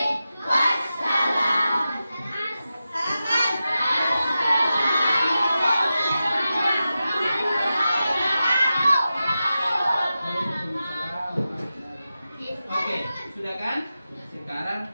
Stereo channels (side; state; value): both; inverted; correlation -0.92